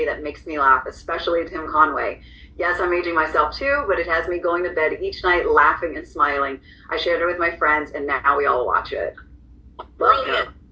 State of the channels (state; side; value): identical; both; correlation 1.00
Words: that makes me laugh, especially Tim Conway. Yes, I'm aging myself too, but it has me going to bed each night laughing and smiling. I shared it with my friends, and now we all watch it. Brilliant.